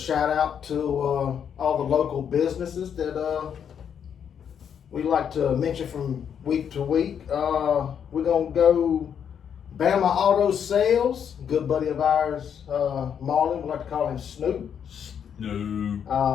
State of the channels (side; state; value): right; quieter; 8.1 dB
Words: out to all the local businesses that we like to mention from week to week. We're going to go Bama Auto Sales, good buddy of ours, Marlon, we like to call him Snoop. No.